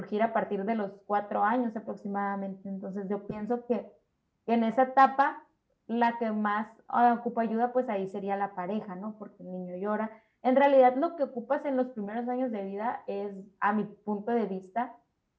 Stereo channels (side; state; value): both; identical; correlation 1.00